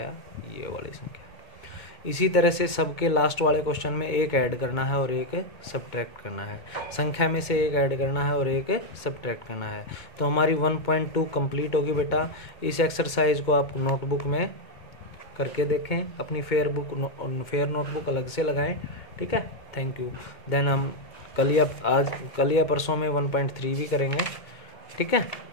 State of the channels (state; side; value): late; right; 2.2 ms